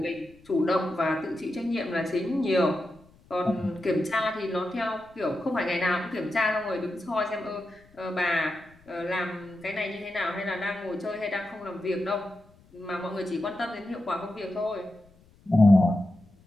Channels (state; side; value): noise; left; rumble, 28 dB below the sound